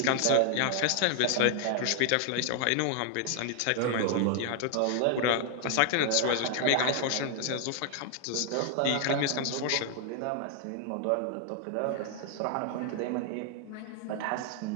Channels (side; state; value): both; different; correlation 0.00